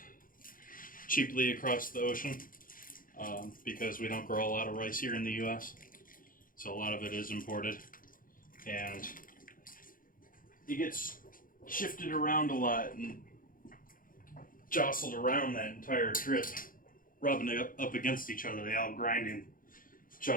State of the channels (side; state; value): right; late; 0.40 ms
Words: cheaply across the ocean, because we don't grow a lot of rice here in the U.S., so a lot of it is imported, and it gets shifted around a lot and jostled around that entire trip, rubbing it up against each other. They all grinding each